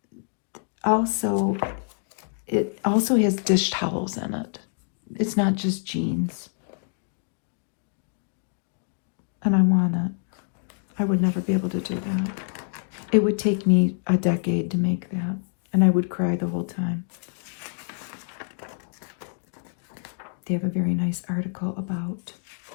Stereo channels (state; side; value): silent; right; 61 dB below the other